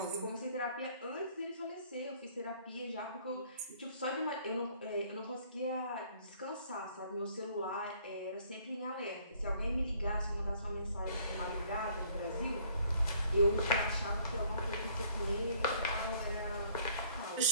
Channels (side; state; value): both; inverted; correlation -0.60